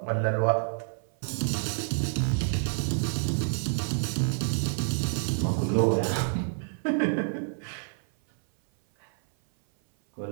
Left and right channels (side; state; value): left; silent; 57 dB below the other